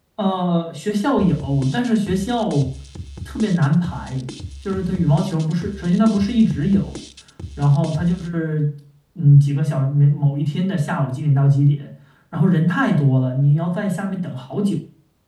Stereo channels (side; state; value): both; identical; correlation 1.00